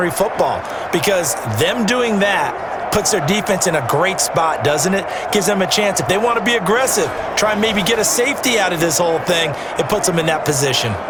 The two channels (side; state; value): both; identical; correlation 1.00